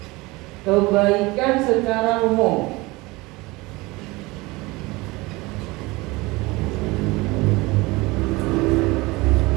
Kebaikan secara umum.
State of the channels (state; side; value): quieter; left; 22.7 dB